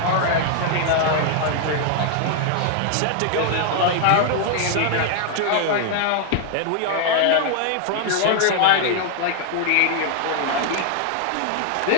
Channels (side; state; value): both; different; correlation 0.00